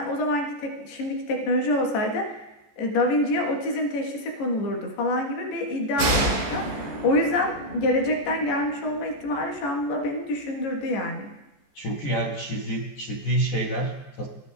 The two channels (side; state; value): right; late; 14 ms